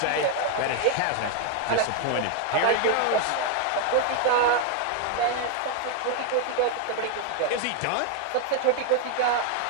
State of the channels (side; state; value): both; different; correlation 0.00